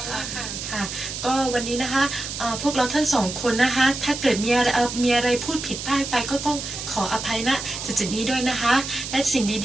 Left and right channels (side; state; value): right; noise; hiss, 7 dB below the sound